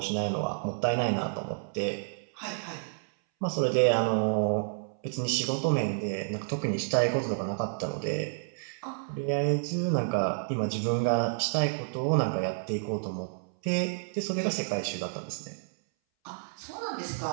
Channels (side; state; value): left; silent; 58 dB below the other